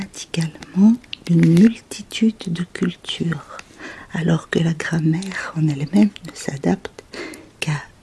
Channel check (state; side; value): identical; both; correlation 1.00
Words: d'une multitude de cultures, alors que la grammaire en elle-même ne s'adapte qu'à